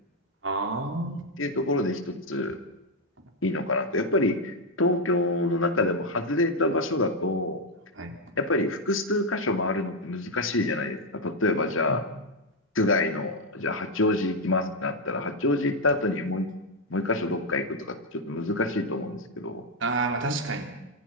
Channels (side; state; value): both; normal; correlation 0.02